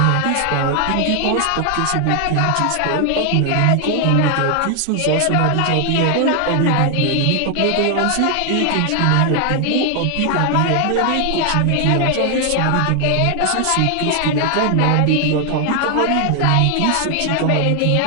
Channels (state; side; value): different; both; correlation 0.00